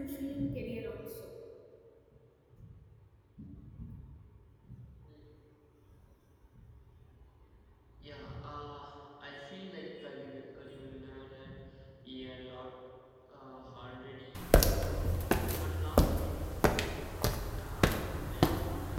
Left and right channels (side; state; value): both; identical; correlation 1.00